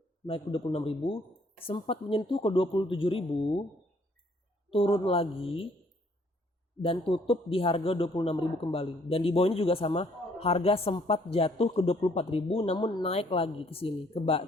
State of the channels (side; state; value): both; normal; correlation 0.64